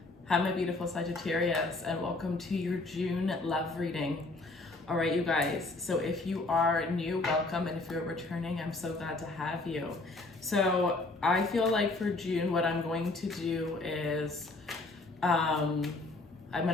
Hi, my beautiful Sagittarius, and welcome to your June love reading. All right, you guys, so if you are new, welcome, and if you're returning, I'm so glad to have you. So I feel like for June, what I'm going to do is I'm going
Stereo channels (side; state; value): right; quieter; 3.1 dB